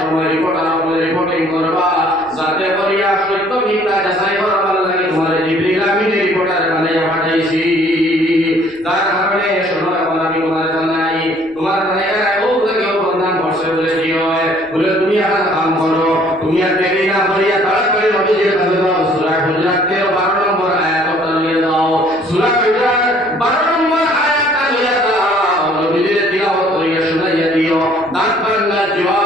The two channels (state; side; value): noise; left; rumble, 29 dB below the sound